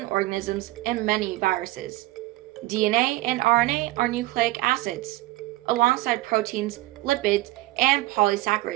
organisms and many viruses. DNA and RNA are nucleic acids, alongside proteins, lipids, and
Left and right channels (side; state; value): left; quieter; 18.5 dB